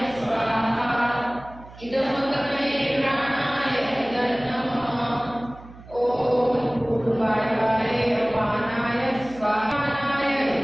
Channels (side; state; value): right; noise; hum, 19 dB below the sound